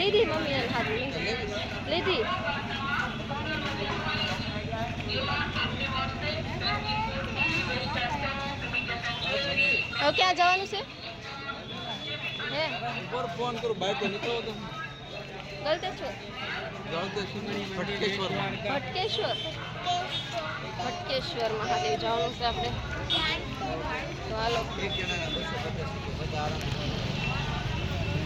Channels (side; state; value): both; identical; correlation 1.00